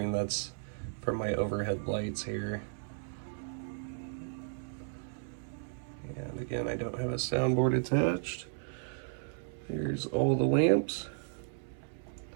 That's from my overhead lights here. And again, I don't have a soundboard attached. Here's all the lamps,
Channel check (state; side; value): silent; left; 55 dB below the other